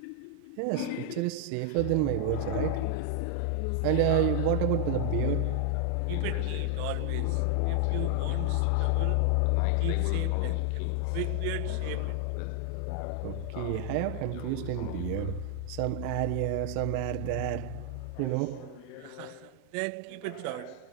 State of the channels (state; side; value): different; both; correlation 0.00